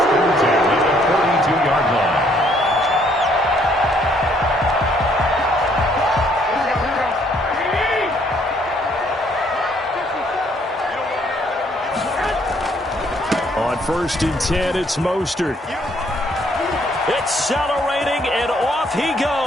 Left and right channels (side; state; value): both; normal; correlation 0.66